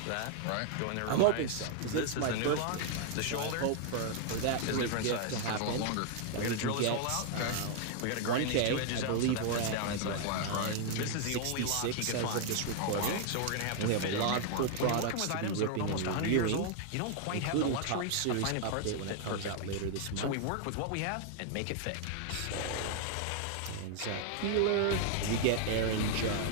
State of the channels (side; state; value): both; different; correlation 0.00